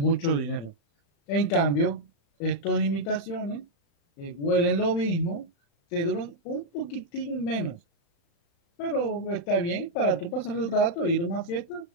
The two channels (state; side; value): late; right; 35 ms